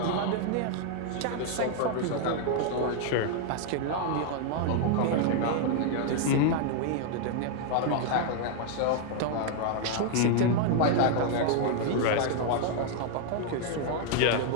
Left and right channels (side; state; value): both; different; correlation 0.00